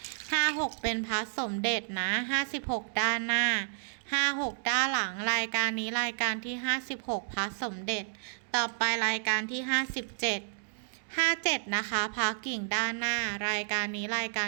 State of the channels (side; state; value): left; silent; digital silence